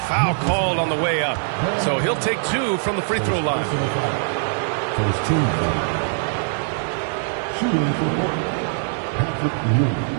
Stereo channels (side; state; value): left; silent; digital silence